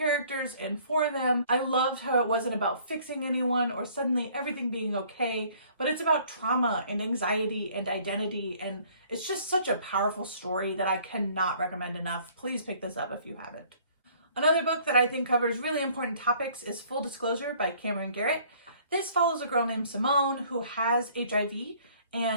and for them. I loved how it wasn't about fixing anyone or suddenly everything being okay, but it's about trauma and anxiety and identity, and it's just such a powerful story that I cannot recommend enough. Please pick this up if you haven't. Another book that I think covers really important topics is Full Disclosure by Cameron Garrett. This follows a girl named Simone who has HIV,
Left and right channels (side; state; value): both; inverted; correlation -0.57